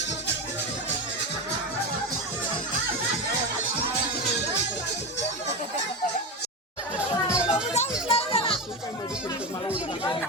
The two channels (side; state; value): both; normal; correlation 0.19